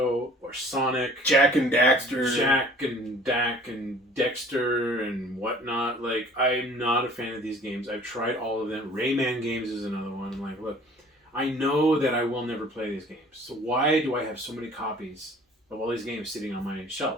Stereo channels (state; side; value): normal; both; correlation 0.50